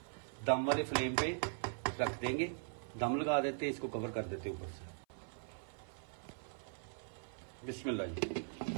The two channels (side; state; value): left; silent; 51 dB below the other